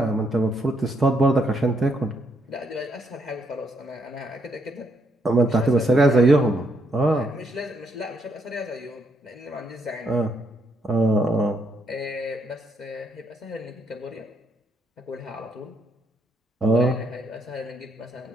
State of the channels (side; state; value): both; normal; correlation 0.75